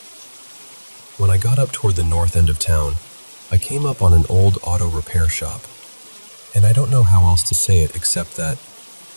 When I got up toward the north end of town, I came up on an old auto repair shop, and I don't know how else to say it except that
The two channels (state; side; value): inverted; both; correlation -1.00